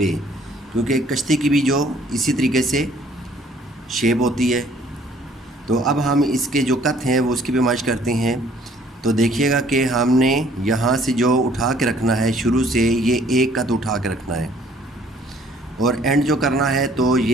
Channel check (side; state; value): both; normal; correlation 0.59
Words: क्योंकि कश्ती की भी जो इसी तरीके से शेप होती है। तो अब हम इसके जो कत हैं वो उसकी भी माइश करते हैं। तो देखिएगा कि हमने यहाँ से जो उठा के रखना है, शुरू से ये एक कत उठा के रखना है और एंड जो करना है तो